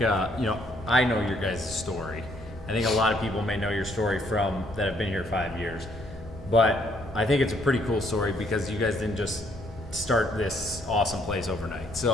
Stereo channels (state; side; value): normal; both; correlation 0.68